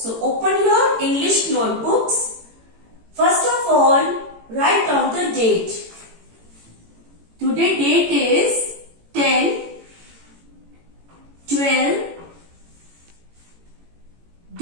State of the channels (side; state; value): left; late; 18 ms